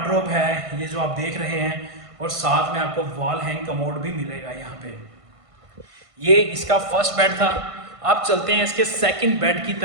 है ये जो आप देख रहे हैं, और साथ में आपको वॉल हैंग कमोड भी मिलेगा यहाँ पे। ये इसका फर्स्ट बेड था। अब चलते हैं इसके सेकंड बेड की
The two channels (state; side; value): late; left; 1.5 ms